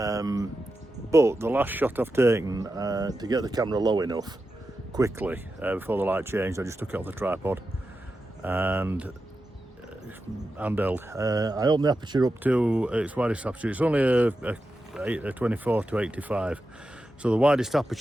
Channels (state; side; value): normal; both; correlation 0.90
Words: the last shot I've taken to get the camera low enough quickly before the light changed, I just took it off the tripod and handheld. I opened the aperture up to its widest aperture. It's only a 24 to 85, so the widest